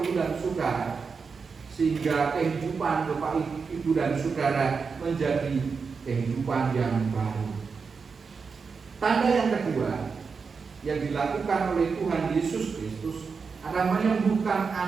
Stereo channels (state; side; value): quieter; left; 5.3 dB